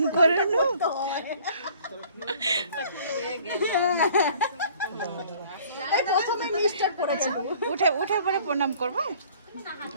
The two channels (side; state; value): both; inverted; correlation -0.54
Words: করে উঠে উঠে পরে প্রণাম করবো